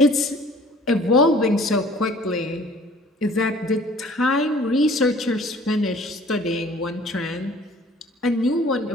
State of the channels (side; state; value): both; normal; correlation 0.52